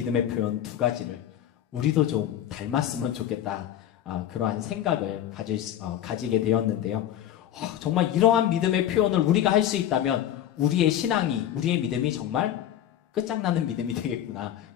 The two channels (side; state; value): right; quieter; 11.1 dB